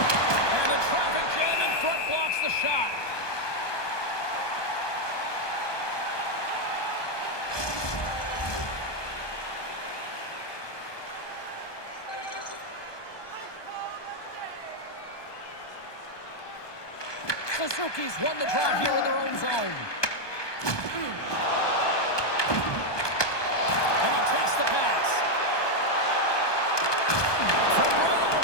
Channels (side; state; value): right; late; 1.2 ms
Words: the traffic jam in front blocks the shot. Suzuki's won the draw here in their own zone. And he takes the pass. From right out